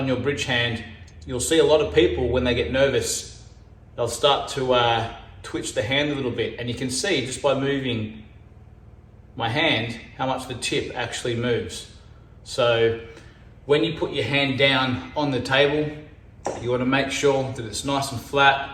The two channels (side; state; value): both; identical; correlation 1.00